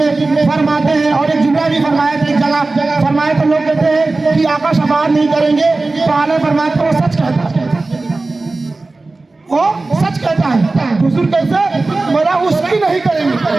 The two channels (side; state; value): left; quieter; 3.3 dB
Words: फरमाते हैं, और एक जुमला भी फरमाया था एक जगह, फरमाया तो लोग कहते हैं कि आका शफाअत नहीं करेंगे, तो आला फरमाते वो सच कहता है, वो सच कहता है। हुजूर कैसे? मेरा उसकी नहीं करेंगे,